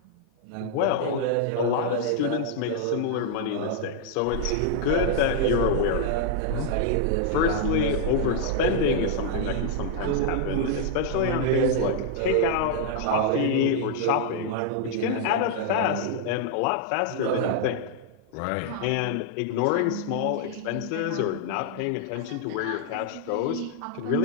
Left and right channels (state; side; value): different; both; correlation -0.01